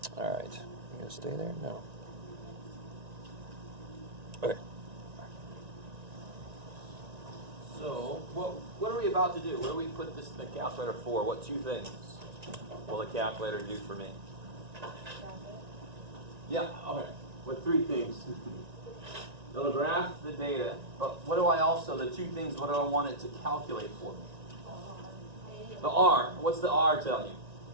Alright. You gonna stay there? No. Okay. So, what are we about to do? What do we put this in the calculator for? What two things will the calculator do for me? Yeah, okay. What three things? It'll graph the data, but what do I also, the two things, what do I want it to calculate for me? The R. What's the R tell you?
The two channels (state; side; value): late; left; 1.9 ms